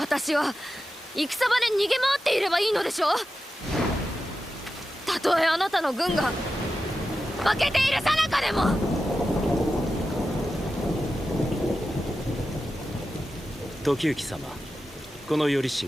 は戦場で逃げ回っていればいいのでしょう。たとえあなたの軍が負けている最中でも。時行様、この頼重、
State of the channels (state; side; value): normal; both; correlation 0.91